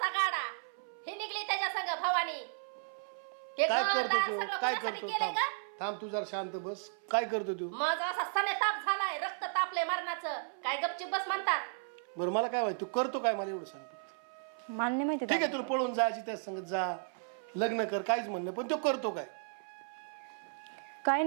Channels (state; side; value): silent; left; 55 dB below the other